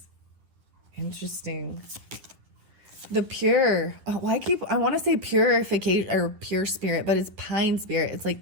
Interesting. The pure. Oh, I want to say purification or pure spirit, but it's pine spirit. It's like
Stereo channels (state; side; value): late; left; 10 ms